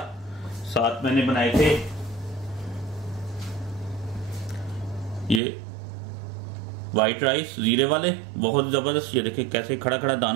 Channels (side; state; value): left; drops out; at 5.4 s